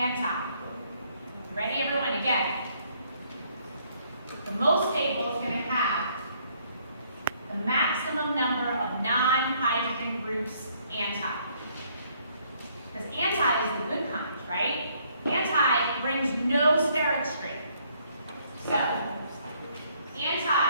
Ready, everyone? Again. The most stable is going to have the maximum number of non-hydrogen groups anti. Because anti is the good kind, right? Anti brings no steric strain. So, anti,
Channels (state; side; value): inverted; both; correlation -0.67